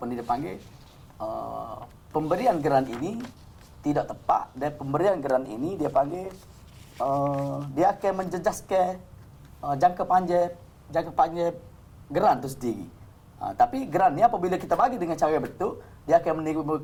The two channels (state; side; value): identical; both; correlation 1.00